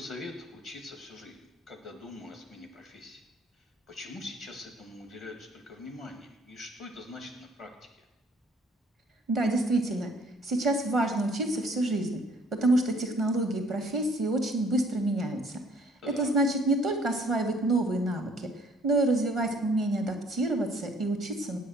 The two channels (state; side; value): normal; both; correlation 0.59